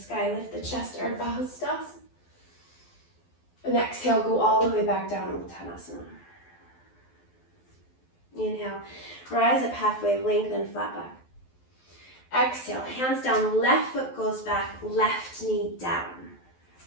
lift the chest, Ardha Hastasana. And exhale, go all the way back down, Uttanasana. Inhale, rise up halfway, lengthen, flat back. Exhale, hands down, left foot goes back, left knee down.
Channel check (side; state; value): right; late; 12 ms